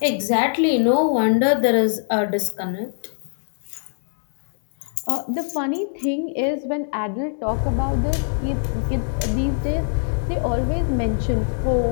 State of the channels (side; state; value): right; silent; 64 dB below the other